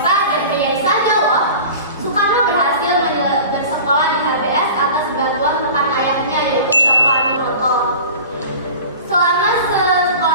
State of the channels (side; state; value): both; inverted; correlation -0.38